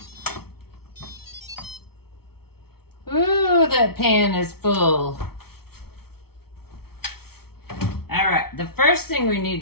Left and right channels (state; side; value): late; right; 0.95 ms